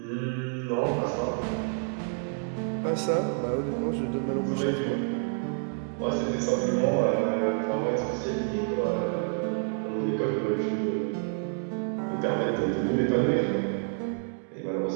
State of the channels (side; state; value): left; silent; 59 dB below the other